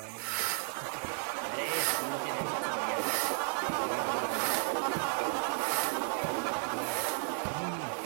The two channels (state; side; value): silent; left; 55 dB below the other